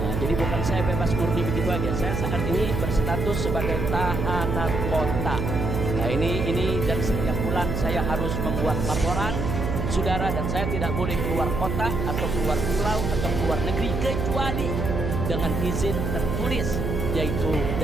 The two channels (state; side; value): noise; right; hum, 1 dB below the sound